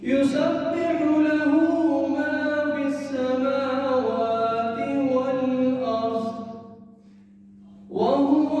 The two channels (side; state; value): both; identical; correlation 1.00